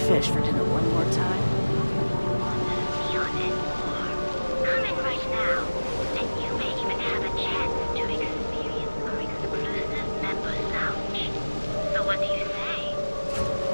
fish for dinner one more time.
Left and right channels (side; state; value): both; inverted; correlation -1.00